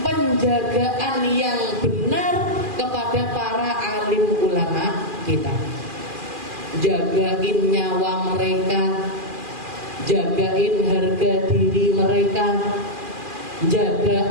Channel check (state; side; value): late; left; 2.4 ms